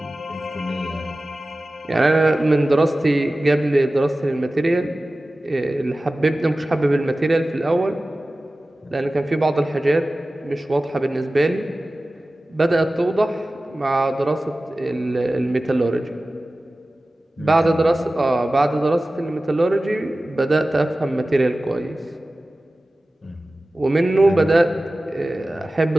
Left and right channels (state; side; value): normal; both; correlation 0.96